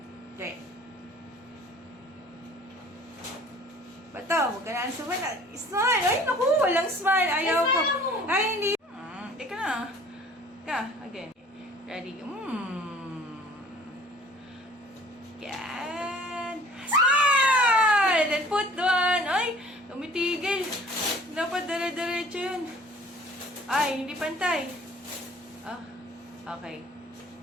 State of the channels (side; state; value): both; normal; correlation 0.50